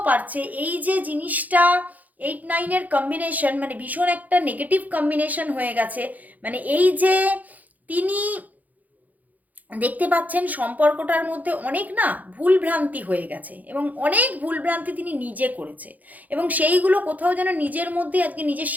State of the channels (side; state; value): left; late; 0.080 ms